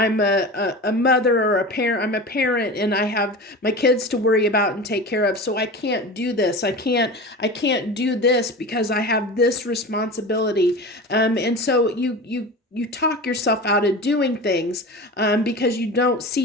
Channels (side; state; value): both; normal; correlation 0.31